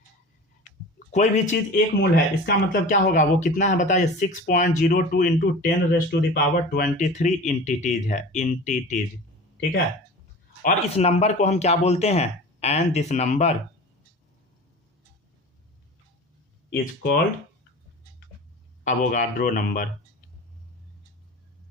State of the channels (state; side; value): normal; both; correlation 0.37